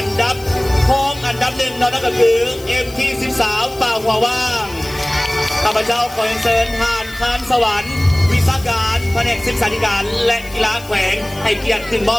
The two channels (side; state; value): left; noise; hiss, 19 dB below the sound